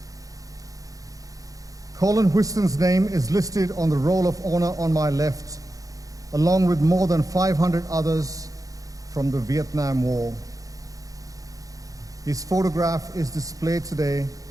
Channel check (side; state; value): left; late; 0.17 ms